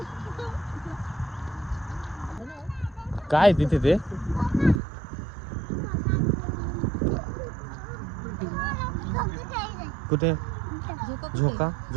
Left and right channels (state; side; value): drops out; left; at 4.8 s